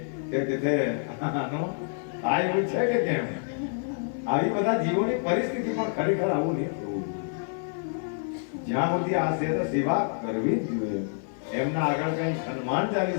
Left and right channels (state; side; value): silent; right; 58 dB below the other